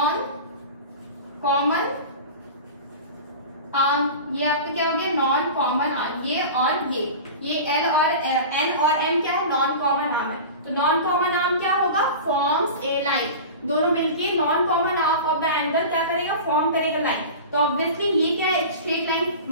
कॉमन आर्म, ये आपका क्या हो गया नॉन कॉमन आर्म, ये और ये L और N और M क्या है नॉन कॉमन आर्म है। तो नॉन कॉमन आर्म क्या होगा, फॉर्म्स ए लाइन, दोनों मिलके non common arm of the angle क्या करेगा, फॉर्म करेगा लाइन। तो ऑब्वियसली ये क्या है, एक स्ट्रेट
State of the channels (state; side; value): inverted; both; correlation -0.33